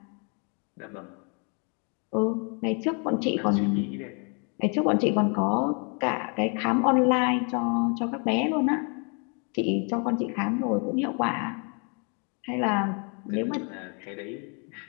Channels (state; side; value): quieter; right; 37.2 dB